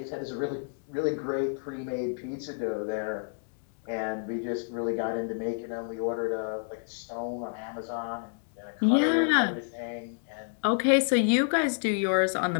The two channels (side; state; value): right; silent; digital silence